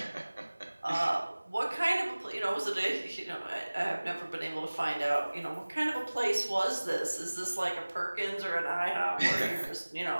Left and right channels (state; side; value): inverted; both; correlation -1.00